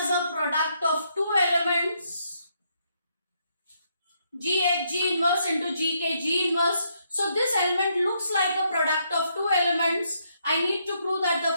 a product of two elements, G inverse into G inverse. So this element looks like a product of two elements. I need to prove that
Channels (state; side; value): inverted; both; correlation -0.75